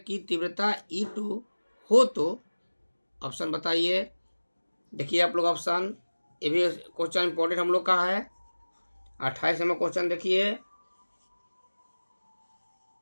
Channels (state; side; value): inverted; both; correlation -1.00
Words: तीव्रता E2 हो तो ऑप्शन बताइए। देखिए आप लोग ऑप्शन, ये भी क्वेश्चन इंपॉर्टेंट हम लोग का है। 28 नंबर क्वेश्चन देखिए,